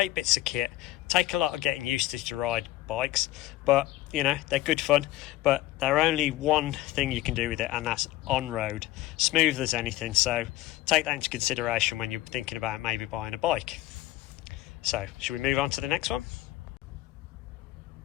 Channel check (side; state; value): right; quieter; 16.3 dB